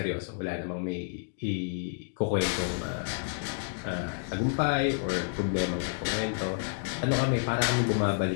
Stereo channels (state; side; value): silent; right; digital silence